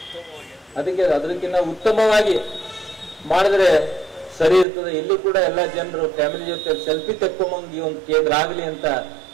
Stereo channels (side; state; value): left; drops out; at 4.7 s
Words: ಅದಕ್ಕಿಂತ ಉತ್ತಮವಾಗಿ ಮಾಡಿದ್ರೆ ಸರಿ ಇರ್ತದೆ. ಇಲ್ಲಿ ಕೂಡ ಎಲ್ಲ ಜನರು ಫ್ಯಾಮಿಲಿ ಜೊತೆ ಸೆಲ್ಫಿ ತಕ್ಕೊಂಬಂಗೆ ಒಂದು ಕೇಂದ್ರ ಆಗಲಿ ಅಂತ